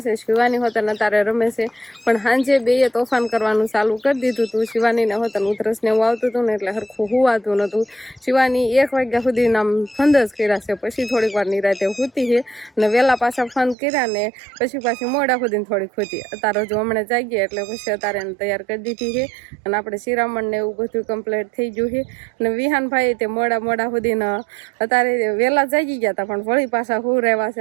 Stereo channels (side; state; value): left; drops out; at 13.8 s